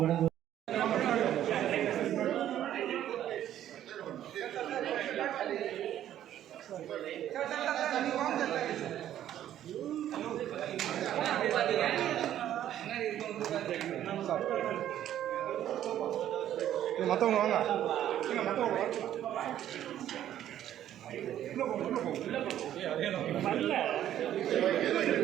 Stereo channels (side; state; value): left; quieter; 11.6 dB